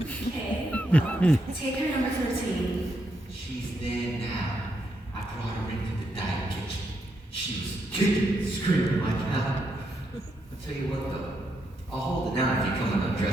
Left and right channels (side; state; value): both; normal; correlation 0.80